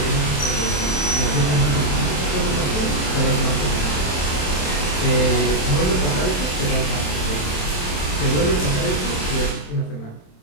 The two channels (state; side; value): late; right; 27 ms